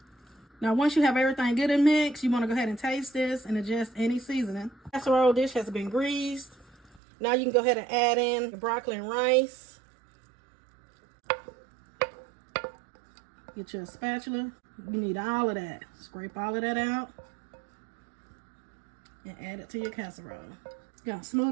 Now once you have everything good and mixed, you want to go ahead and taste this and adjust any seasoning. Casserole dish has been greased. Now you can go ahead and add in your broccoli and rice. Get your spatula. You need all of that. Scrape all of that out and add it to your casserole. You're gonna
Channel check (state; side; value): drops out; left; at 7.0 s